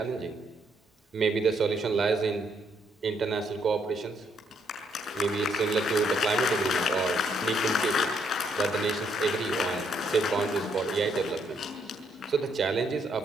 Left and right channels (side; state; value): both; normal; correlation 0.72